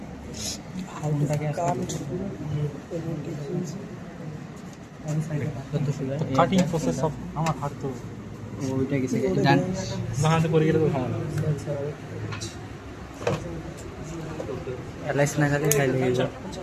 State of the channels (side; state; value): both; identical; correlation 1.00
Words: কাটিং প্রসেস সব আমার হাত তো ওইটা গেছে বাহাতে করে গেলে তো সমস্যা এলাইস না খালি খাইলে